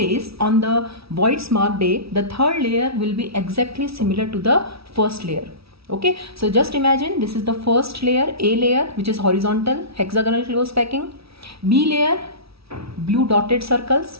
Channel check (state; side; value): late; left; 0.76 ms